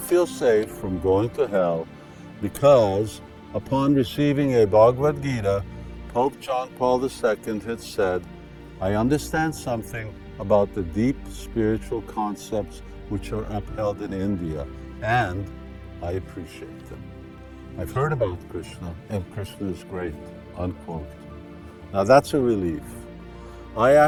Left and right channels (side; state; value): both; identical; correlation 1.00